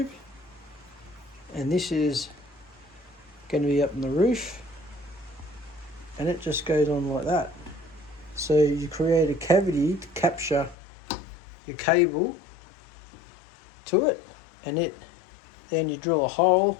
and this is going to be up on the roof, and it just goes on like that. So you create a cavity to capture your cable to it, and then you drill a hole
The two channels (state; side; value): drops out; right; at 10.8 s